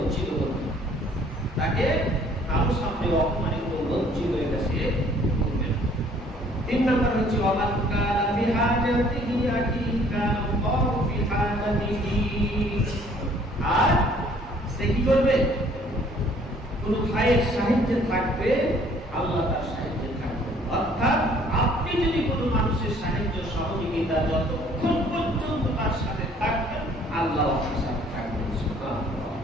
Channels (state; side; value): normal; both; correlation 0.59